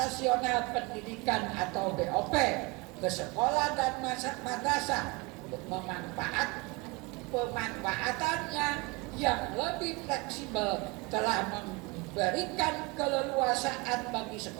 pendidikan atau BOP ke sekolah dan madrasah pemanfaatannya yang lebih fleksibel telah memberikan keleluasaan bagi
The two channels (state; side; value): quieter; left; 25.4 dB